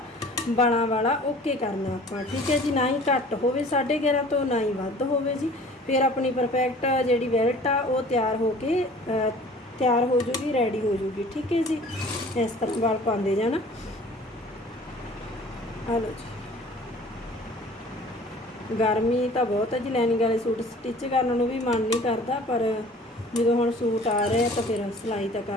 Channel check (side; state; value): both; normal; correlation 0.48